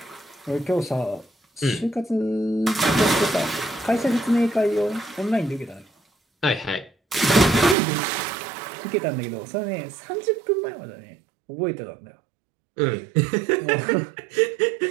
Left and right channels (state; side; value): drops out; left; at 7.8 s